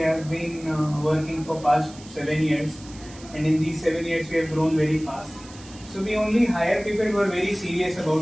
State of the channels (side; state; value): right; noise; hiss, 20 dB below the sound